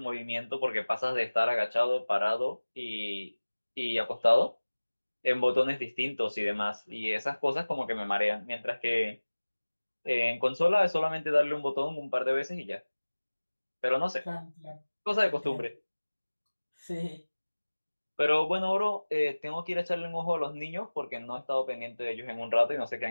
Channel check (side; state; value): both; inverted; correlation -1.00